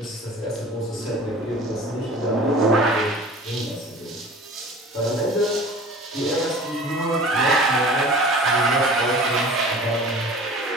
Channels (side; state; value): both; normal; correlation 0.42